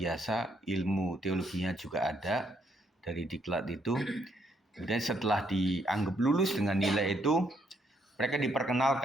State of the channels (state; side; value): normal; both; correlation 0.73